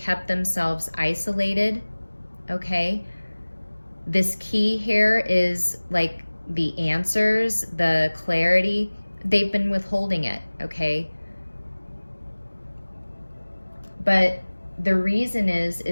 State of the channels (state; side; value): inverted; both; correlation -1.00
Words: themselves isolated, okay? This key here is like the answers, the clarity. They've been withholding it, okay? But the reason